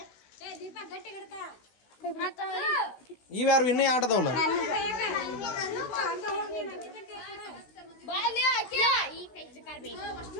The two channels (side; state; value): right; late; 16 ms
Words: ಇವ್ಯಾರು ಇನ್ನೂ ಆಟದವಲ್ಲ.